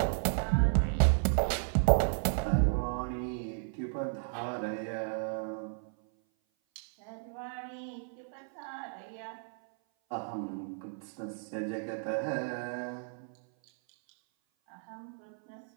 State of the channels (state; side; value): silent; left; 55 dB below the other